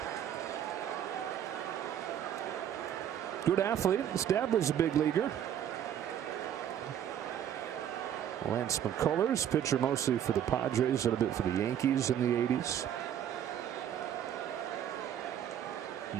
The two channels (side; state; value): left; quieter; 10.0 dB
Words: Good athlete. His dad was a big leaguer. Lance McCullers, pitcher mostly for the Padres, a little bit for the Yankees in the 80s.